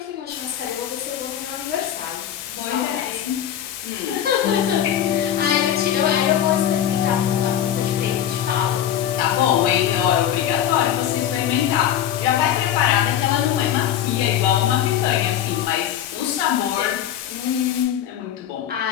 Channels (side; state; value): right; quieter; 10.5 dB